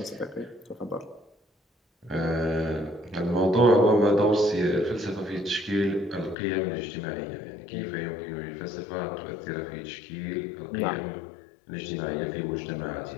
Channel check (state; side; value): drops out; right; at 6.4 s